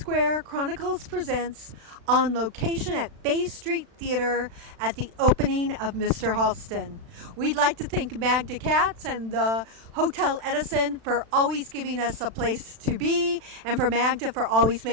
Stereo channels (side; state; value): left; late; 36 ms